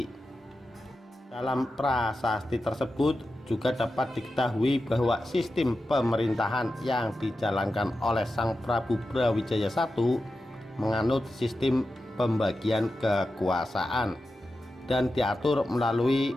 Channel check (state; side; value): normal; both; correlation 0.91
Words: Dalam prasasti tersebut juga dapat diketahui bahwa sistem pemerintahan yang dijalankan oleh Sang Prabu Brawijaya I menganut sistem pembagian kekuasaan dan diatur melalui